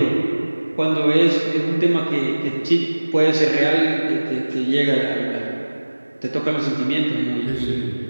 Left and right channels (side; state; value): both; inverted; correlation -1.00